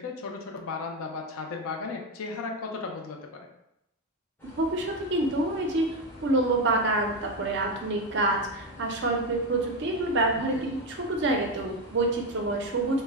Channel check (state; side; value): normal; both; correlation 0.11